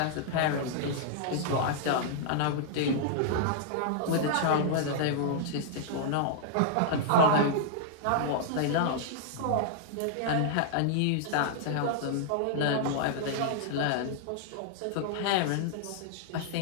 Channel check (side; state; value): both; different; correlation -0.01